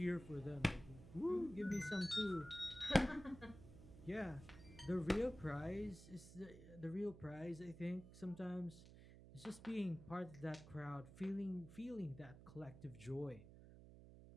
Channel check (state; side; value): noise; right; hum, 16 dB below the sound